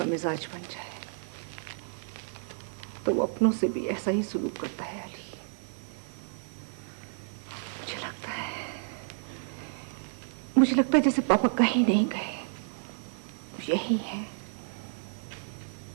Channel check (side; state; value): left; silent; digital silence